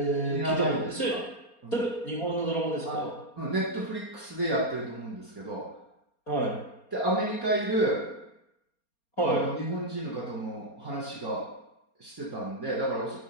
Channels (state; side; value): late; right; 4.3 ms